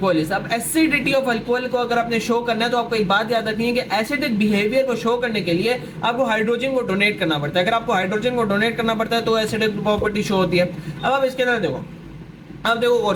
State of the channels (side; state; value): both; identical; correlation 1.00